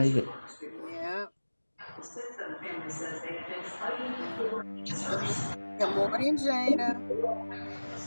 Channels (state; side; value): inverted; both; correlation -1.00